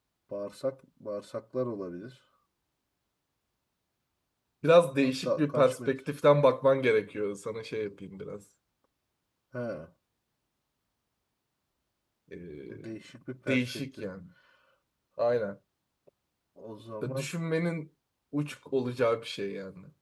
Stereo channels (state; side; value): identical; both; correlation 1.00